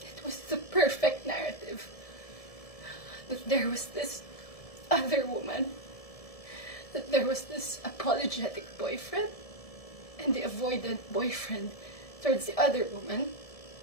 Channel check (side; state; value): right; late; 1.7 ms